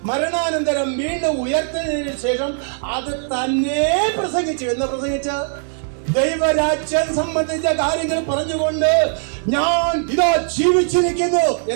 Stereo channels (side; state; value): left; silent; digital silence